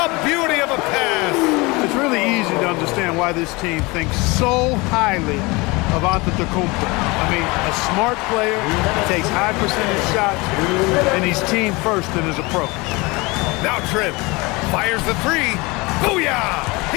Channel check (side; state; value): right; quieter; 24.7 dB